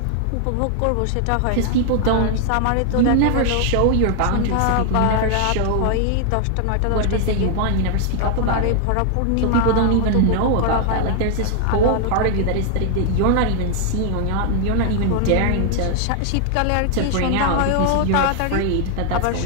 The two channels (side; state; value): both; different; correlation 0.00